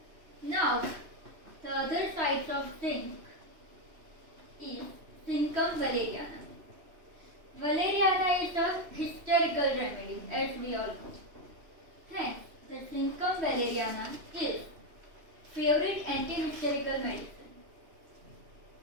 Now, the other sides of zinc is Zincum valeriana. Valeriana is a hysterical remedy, as we all know. Hence, the Zincum valeriana is favorite anti-hysterical medicine.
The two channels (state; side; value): late; left; 3.0 ms